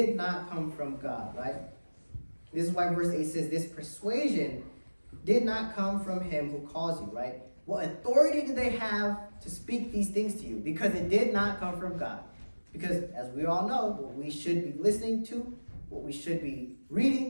not come from God, right? This is why verse 8 says, this persuasion did not come from him who calls you, right? What authority do they have to speak these things to you? Because it did not come from God. Because as we all know, what we should be listening to, what we should be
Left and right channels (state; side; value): inverted; both; correlation -1.00